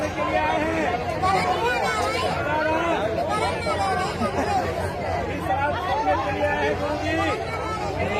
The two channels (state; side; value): identical; both; correlation 1.00